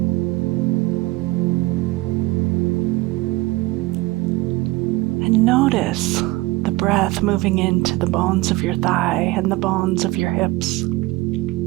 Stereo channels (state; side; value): quieter; left; 20.4 dB